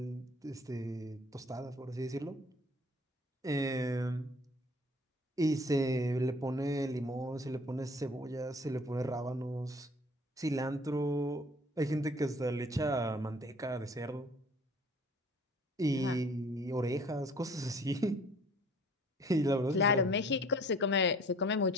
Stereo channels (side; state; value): both; normal; correlation 0.52